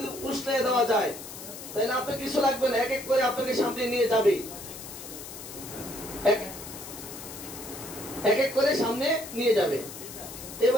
উষ্ণে দেওয়া যায়, তাহলে আপনার কিছু লাগবে না, এক এক করে আপনাকে সামনে নিয়ে যাবে, এক এক করে সামনে নিয়ে যাবে।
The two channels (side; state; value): left; noise; hiss, 12 dB below the sound